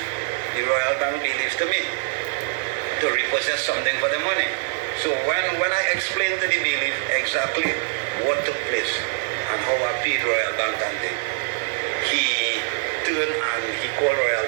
Royal Bank bailiff to me to repossess something for the money. So when I explained to the bailiff exactly what took place and how I paid Royal Bank and thing, he turned and he called Royal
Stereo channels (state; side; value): silent; left; 63 dB below the other